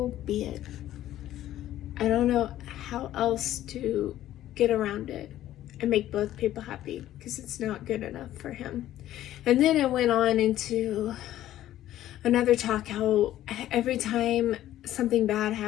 be it. I don't know how else to get around it and make both people happy, because it's not good enough for him. And then it went on into another talk how every time something bad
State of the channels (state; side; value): quieter; right; 13.2 dB